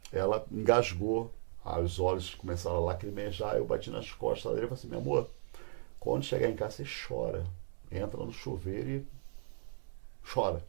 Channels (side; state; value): left; silent; 54 dB below the other